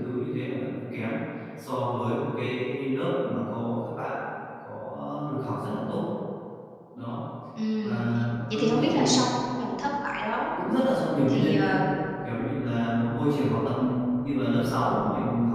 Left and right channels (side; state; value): both; identical; correlation 1.00